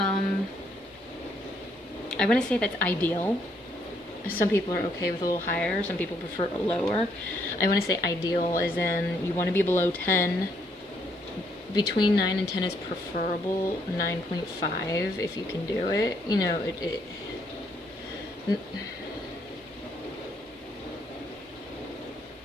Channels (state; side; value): normal; both; correlation 0.71